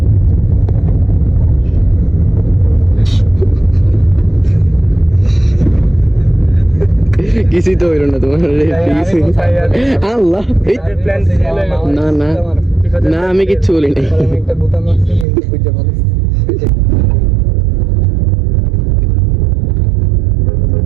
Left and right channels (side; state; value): left; drops out; at 15.2 s